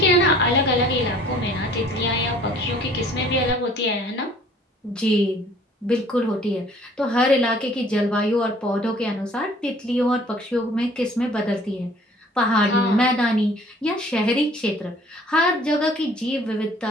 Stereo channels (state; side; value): normal; both; correlation 0.54